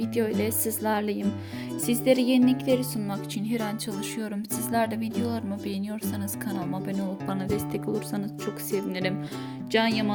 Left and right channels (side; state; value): both; identical; correlation 1.00